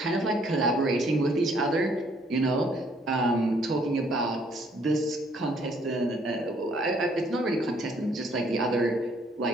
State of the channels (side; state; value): both; normal; correlation 0.65